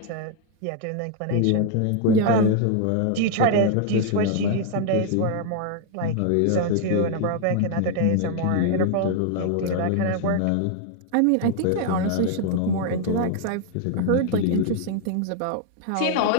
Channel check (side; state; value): both; different; correlation 0.00